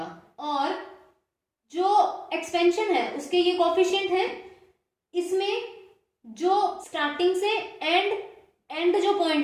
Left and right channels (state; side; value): identical; both; correlation 1.00